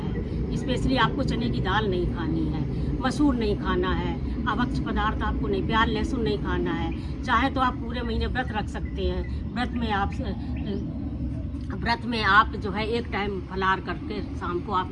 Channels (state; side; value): identical; both; correlation 1.00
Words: स्पेशली आपको चने की दाल नहीं खानी है, मसूर नहीं खाना है, अभक्ष्य पदार्थ आपको नहीं, प्याज लहसुन नहीं खाना है। चाहे तो आप पूरे महीने व्रत रख सकते हैं। व्रत में आप जो है 1 टाइम फलाहार करके शाम को आप